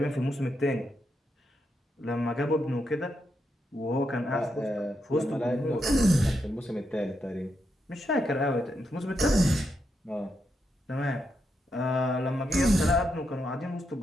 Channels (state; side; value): normal; both; correlation 0.83